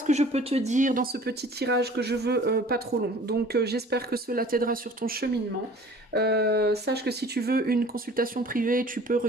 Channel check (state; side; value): normal; both; correlation 0.48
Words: que je peux te dire dans ce petit tirage que je veux pas trop long. Donc j'espère que cela t'aidera sur ton cheminement. Sache que si tu veux une consultation privée, tu peux